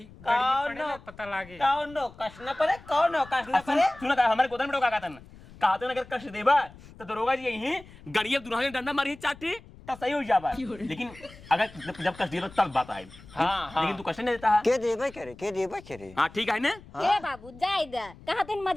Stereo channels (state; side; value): noise; left; rumble, 20 dB below the sound